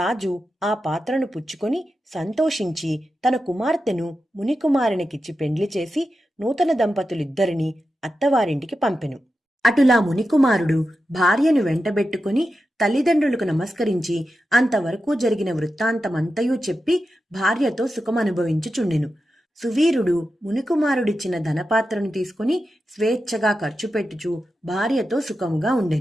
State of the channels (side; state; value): both; normal; correlation 0.90